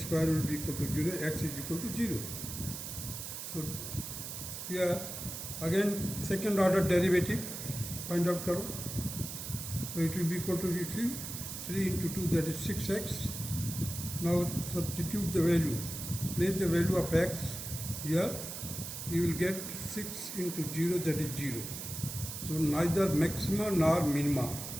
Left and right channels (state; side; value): noise; right; hiss, 7 dB below the sound